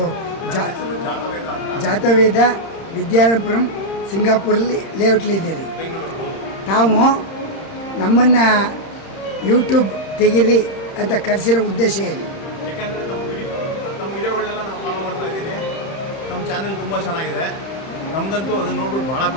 ಜಾತವೇದ, ವಿದ್ಯಾಪುರಂ, ಸಿಂಗಾಪುರಲ್ಲಿ ಲೇಔಟ್ಲಿದ್ದೀರಿ. ತಾವು ನಮ್ಮನ್ನು ಯೂಟ್ಯೂಬ್ ತೆಗೀರಿ ಅಂತ ಕರೆಸಿರೋ ಉದ್ದೇಶ ಏನು? ಯಾಕೆಂದರೆ ತಮ್ಮ ವಿಡಿಯೋಗಳನ್ನೆಲ್ಲ ನಾವು ಫಾಲೋ ಮಾಡ್ತಾ ಇದ್ದೀನಿ. ನಮ್ಮ ಚಾನೆಲ್ ತುಂಬ ಚೆನ್ನಾಗಿದೆ. ನಮಗಂತೂ ಅದನ್ನು ನೋಡ್ಬಿಟ್ಟು ಭಾಳ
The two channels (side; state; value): right; late; 31 ms